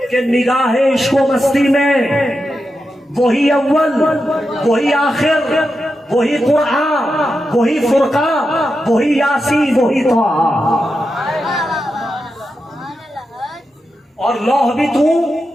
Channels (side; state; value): both; normal; correlation 0.88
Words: کہ نگاہ عشق و مستی میں وہی اول، وہی آخر، وہی قرآن، وہی فرقہ، وہی یاسین، وہی طٰہٰ. اور لوح بھی تو،